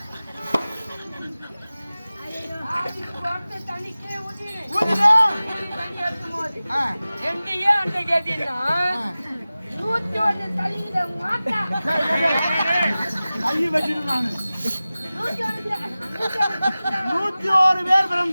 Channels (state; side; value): inverted; both; correlation -0.97